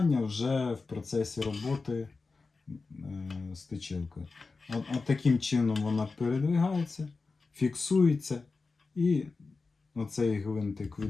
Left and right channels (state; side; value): quieter; right; 4.1 dB